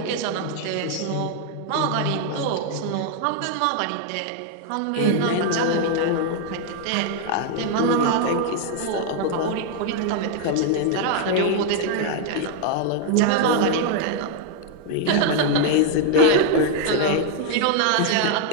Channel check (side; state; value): both; different; correlation 0.00